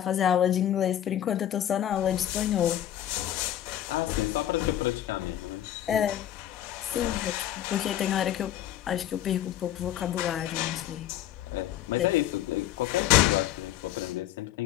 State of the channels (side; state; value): right; quieter; 11.8 dB